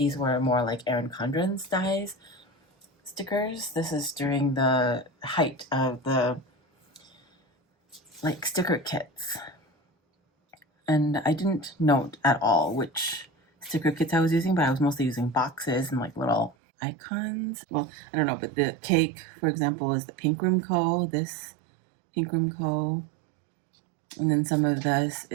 were more like Erin Condren's size stickers. This is during the height of the like sticker kits. And I didn't note at all which sticker kits I was using, but I was mostly using boxes and like little icons. Well, I don't know, but the cake, for example, is the Pink Room Co. This Pink Room Co. And then some of this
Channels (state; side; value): drops out; left; at 16.6 s